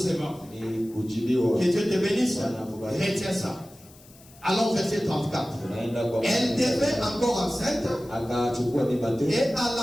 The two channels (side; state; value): left; noise; hiss, 24 dB below the sound